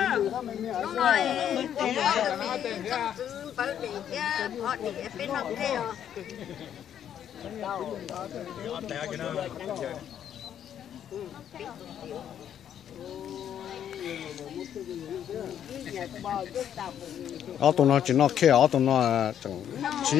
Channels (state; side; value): quieter; right; 9.6 dB